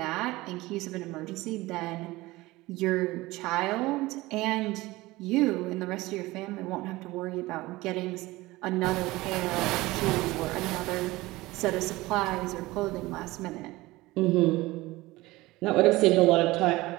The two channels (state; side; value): quieter; left; 19.7 dB